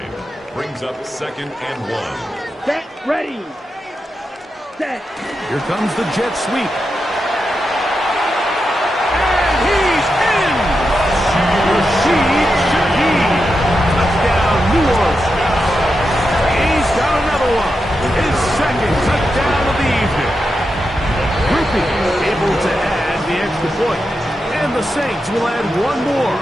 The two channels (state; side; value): normal; both; correlation 0.88